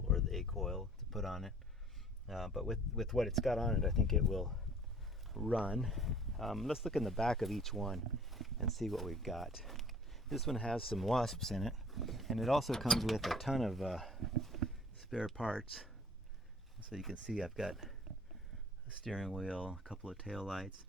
or the A coil, to put on it. But with what it's got on it, I think it will run. Let's look in the back of each one and see what we've got. This one has some wasps in it, and it also comes with a ton of spare parts. So you can see I've got a steering wheel, a couple of tail lights.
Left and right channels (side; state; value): both; normal; correlation 0.51